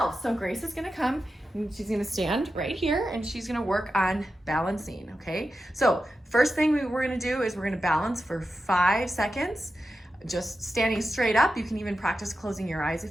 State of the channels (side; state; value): both; normal; correlation 0.91